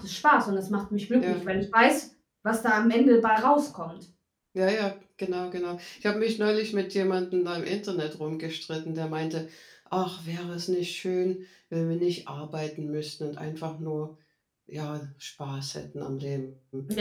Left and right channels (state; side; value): identical; both; correlation 1.00